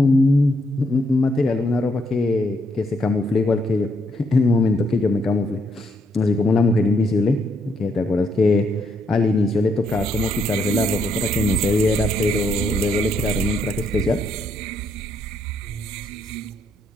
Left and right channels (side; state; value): both; normal; correlation 0.75